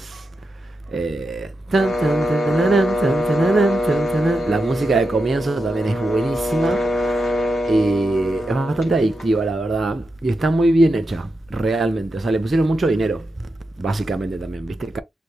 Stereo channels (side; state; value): both; normal; correlation 0.88